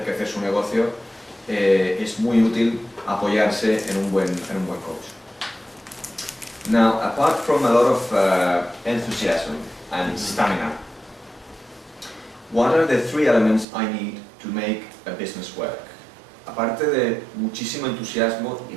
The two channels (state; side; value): drops out; left; at 13.7 s